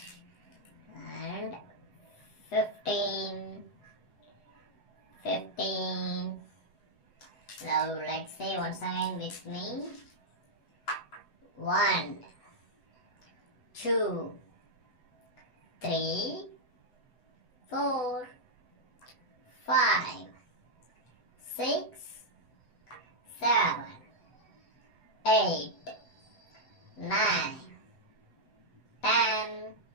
and 15. Now let's say once again with me. 1, 2, 3, 4, 5, 6, 7, 8, 9, 10,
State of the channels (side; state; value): right; late; 7.9 ms